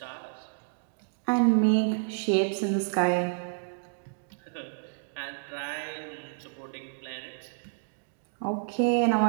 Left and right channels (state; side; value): silent; left; digital silence